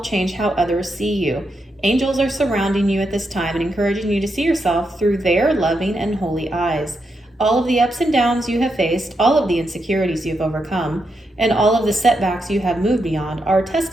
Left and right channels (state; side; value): normal; both; correlation 0.83